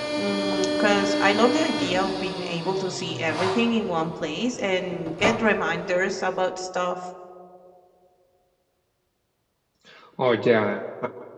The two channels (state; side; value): identical; both; correlation 1.00